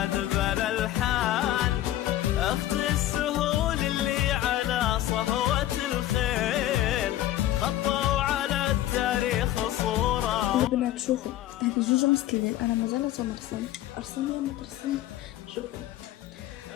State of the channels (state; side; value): quieter; right; 13.7 dB